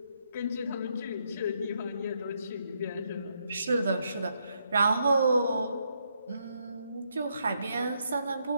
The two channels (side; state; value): both; inverted; correlation -0.77